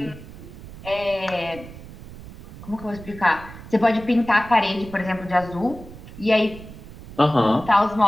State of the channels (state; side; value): noise; right; rumble, 16 dB below the sound